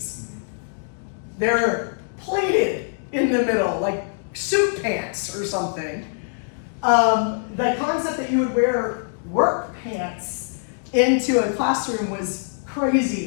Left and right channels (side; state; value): right; silent; digital silence